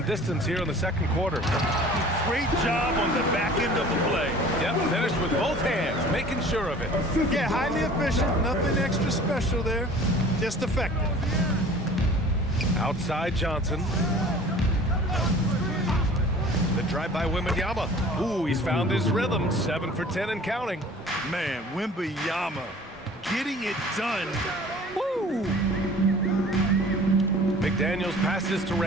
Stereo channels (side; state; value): both; normal; correlation 0.46